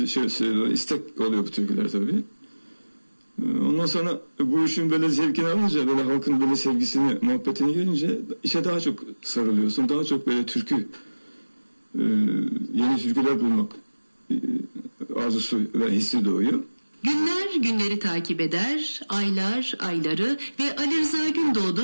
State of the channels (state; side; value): inverted; both; correlation -1.00